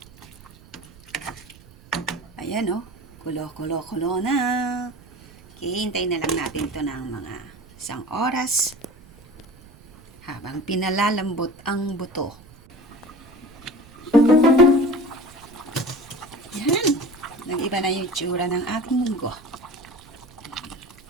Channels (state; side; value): noise; right; rumble, 23 dB below the sound